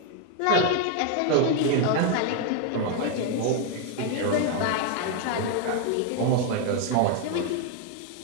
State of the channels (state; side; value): different; both; correlation 0.00